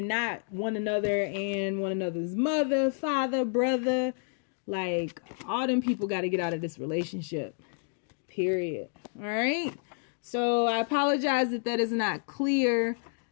not one another and one another's mother, father, brother. Like, all them people got to get out of this relationship. Period. All right. So I apologize if that is not clear,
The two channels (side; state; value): right; silent; 58 dB below the other